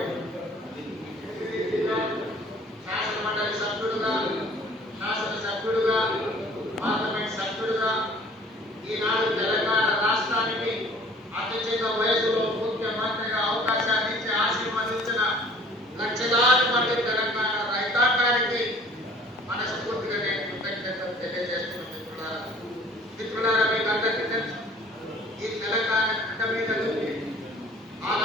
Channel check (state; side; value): normal; both; correlation 0.52